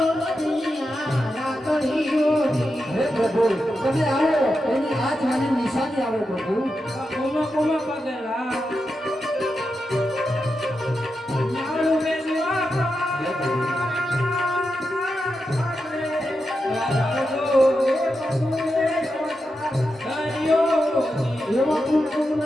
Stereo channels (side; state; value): both; normal; correlation 0.88